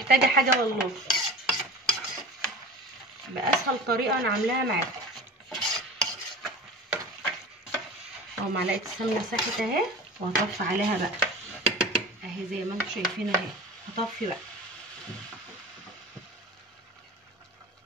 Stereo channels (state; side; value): normal; both; correlation 0.36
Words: حاجه والله، باسهل طريقه انا عاملاها معاكم اهو. معلقه السمنه ساحت اهي، وهطفي عليها بقى اهي زي ما انتم شايفين اهي. هطفي بقى